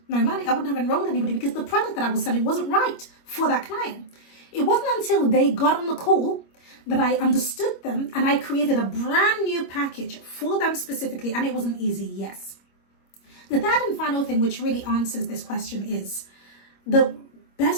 no money. I wouldn't have enrolled anybody because the product that I was selling wasn't right for that client. It wasn't until they got on the call that I understood them and I created a brand new package for them specifically, and it wasn't easy, yes. The third and final thing which really answers this question is the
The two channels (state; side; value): late; right; 25 ms